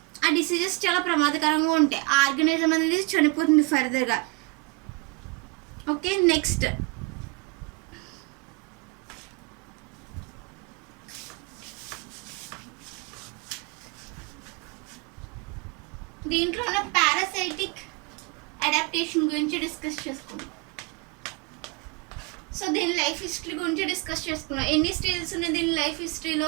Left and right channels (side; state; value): left; quieter; 26.9 dB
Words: ఆ డిసీజెస్ చాలా ప్రమాదకరంగా ఉంటాయి. ఆ ఆర్గానిజం అనేది చనిపోతుంది ఫర్దర్గా. ఓకే, నెక్స్ట్ దీంట్లో ఉన్న పారాసైటిక్ అడాప్టేషన్ గురించి డిస్కస్ చేసుకుందాం. సో దీని లైఫ్ హిస్టరీ గురించి డిస్కస్ చేసుకున్నాం. ఎన్ని స్టేజెస్ ఉన్నాయి దీని లైఫ్